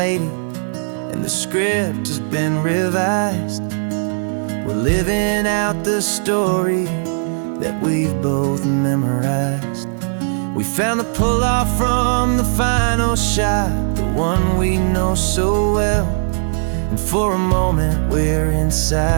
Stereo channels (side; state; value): left; silent; digital silence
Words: and the script has been revised. We're living out the story that we've both memorized. We found the pull-off from the final shot, the one we know so well. And for a moment we're